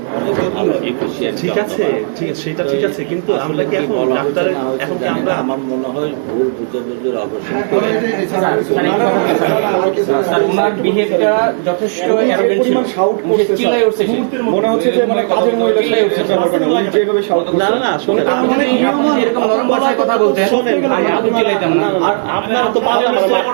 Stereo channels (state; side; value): silent; left; digital silence